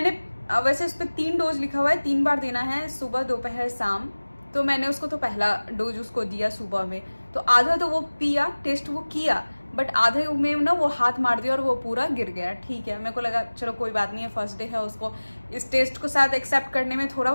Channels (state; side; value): inverted; both; correlation -1.00